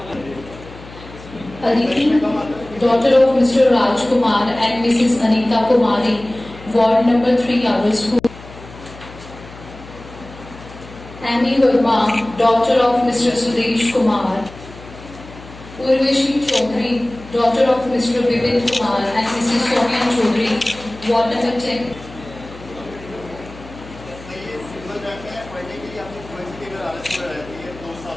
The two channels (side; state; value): left; noise; hum, 17 dB below the sound